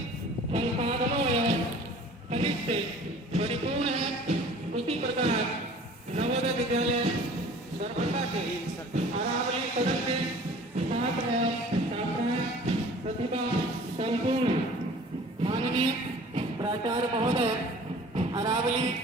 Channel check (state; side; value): normal; both; correlation 0.47